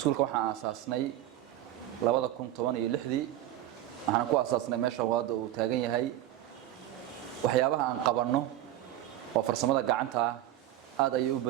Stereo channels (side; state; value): left; quieter; 13.4 dB